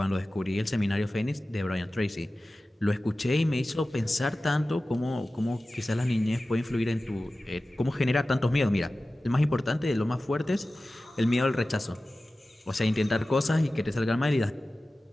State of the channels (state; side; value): normal; both; correlation 0.96